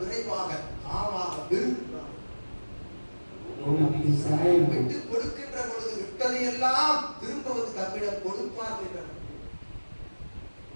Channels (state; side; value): inverted; both; correlation -1.00